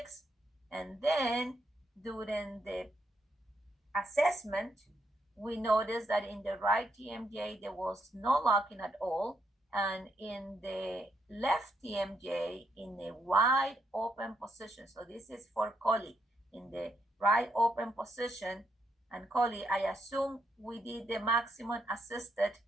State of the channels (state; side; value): normal; both; correlation 0.77